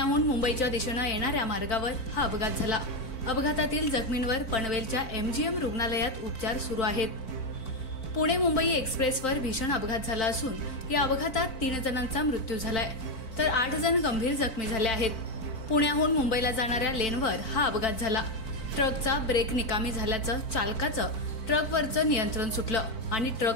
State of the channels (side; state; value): right; late; 4.5 ms